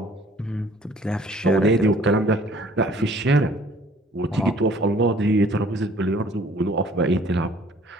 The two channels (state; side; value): normal; both; correlation 0.56